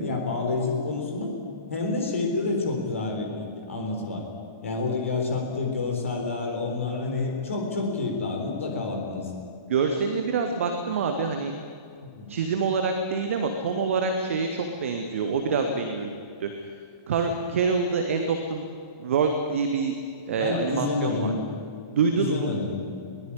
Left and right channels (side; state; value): both; inverted; correlation -0.39